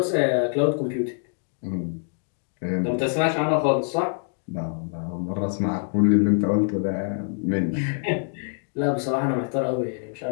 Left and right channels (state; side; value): silent; right; 62 dB below the other